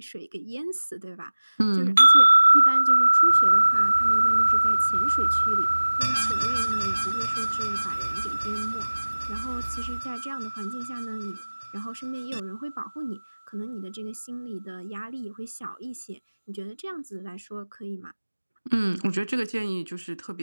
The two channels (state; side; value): inverted; both; correlation -1.00